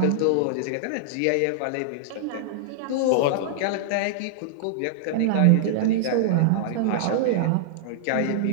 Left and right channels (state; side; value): different; both; correlation -0.01